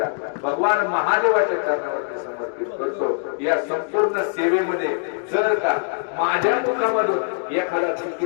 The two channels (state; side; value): silent; right; digital silence